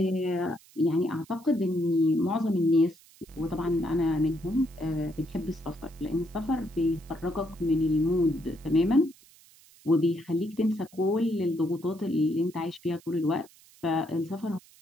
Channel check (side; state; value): right; noise; hiss, 26 dB below the sound